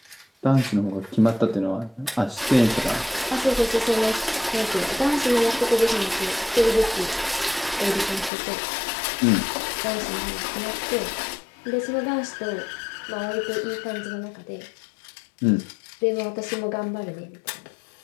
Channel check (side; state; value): right; drops out; at 8.3 s